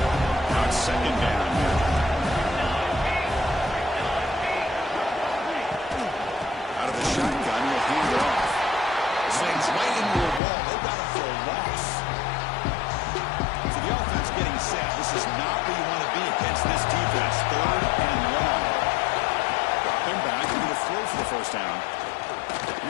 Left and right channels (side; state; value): right; drops out; at 10.4 s